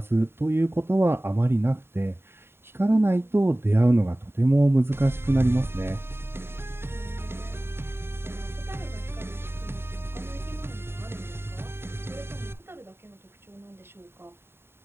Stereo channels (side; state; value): left; late; 0.11 ms